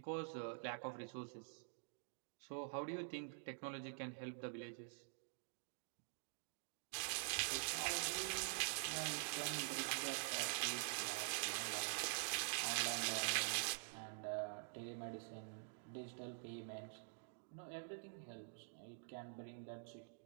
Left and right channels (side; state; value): left; silent; digital silence